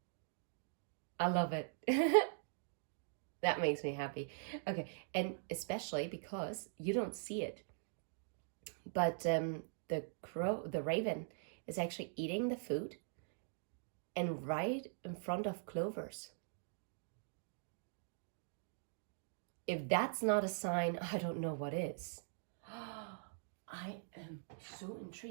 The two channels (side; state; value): left; silent; digital silence